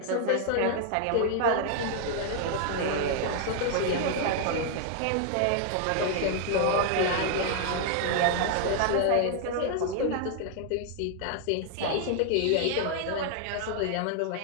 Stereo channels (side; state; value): both; different; correlation 0.00